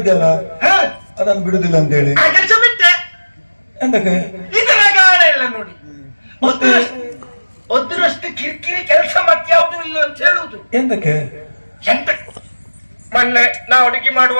ಅದನ್ನು ಬಿಡುದಿಲ್ಲ ಅಂತ ಹೇಳಿ ಕೆಲಸ ಬಿಟ್ಟೆ. ಎಂತಕ್ಕೆ ಇದು ರಗಾಳ ಇಲ್ಲ ನೋಡಿ. ಒದ್ರಷ್ಟು ಕಿರಿಕಿರಿ ಕೆಲಸ ಮತ್ಯಾವುದು ಇಲ್ಲ ಅಂತ ಹೇಳುವುದು. ಎಂತಕ್ಕೆ? ಎಂತ ಮೊನ್ನೆ ನಾ ಅಡುಗೆ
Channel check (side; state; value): both; inverted; correlation -1.00